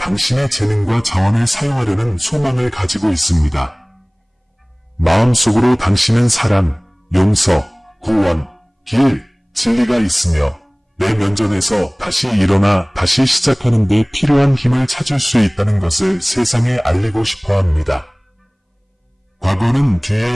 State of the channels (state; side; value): identical; both; correlation 1.00